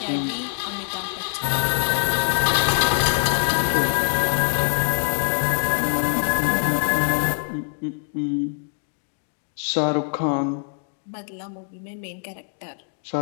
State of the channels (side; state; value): right; silent; digital silence